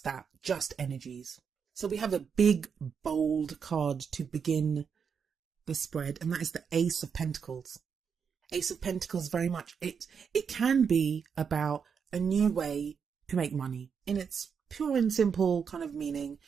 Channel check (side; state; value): left; quieter; 6.6 dB